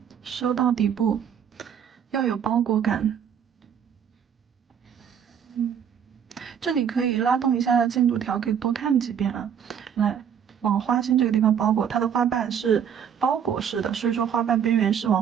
收到底部，要有包裹感。这里可以拉动一下进度条，可以多看几遍啊。来，往花心这个地方包裹，它的花瓣是包裹式的，所以说花瓣边缘是往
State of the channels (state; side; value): quieter; left; 8.2 dB